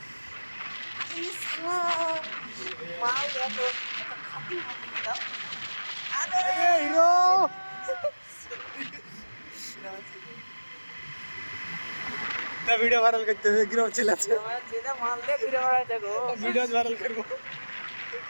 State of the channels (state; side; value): inverted; both; correlation -1.00